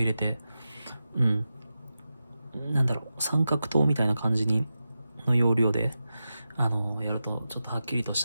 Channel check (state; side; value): inverted; both; correlation -0.91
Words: れて、なんだろう、三角刀みたいな感じの要領で、やるとちょっとはっきりとし